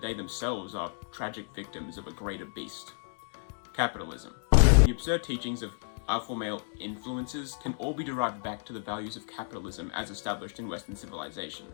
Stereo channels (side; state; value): right; silent; digital silence